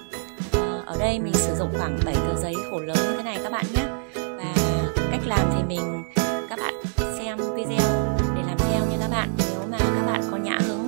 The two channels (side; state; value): left; silent; digital silence